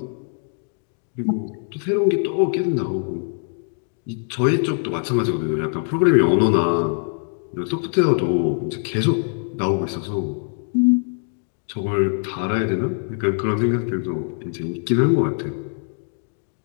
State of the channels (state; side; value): silent; right; 59 dB below the other